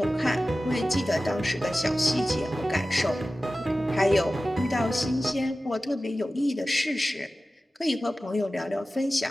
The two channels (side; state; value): both; normal; correlation 0.95